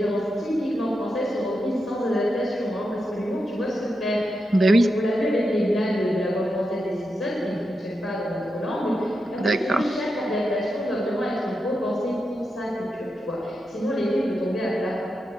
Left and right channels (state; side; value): normal; both; correlation 0.87